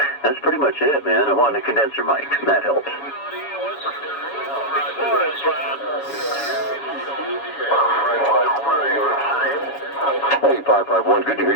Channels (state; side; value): late; right; 7.1 ms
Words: That's pretty much it, man. I want a condenser mic, and that helps. Hey, 551, good to hear